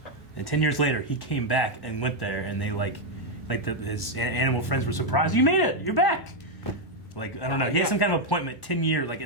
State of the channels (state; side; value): late; right; 1.4 ms